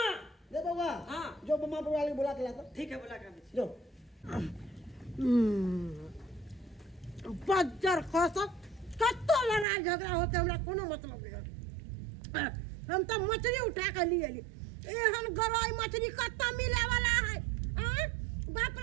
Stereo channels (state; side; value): drops out; left; at 9.7 s